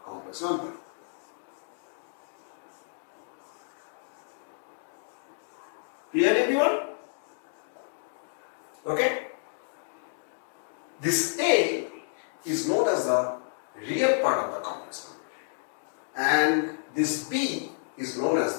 complex number. Clear everyone? Okay. This A is known as the real part of the complex number and this B is known as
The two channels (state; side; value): silent; right; digital silence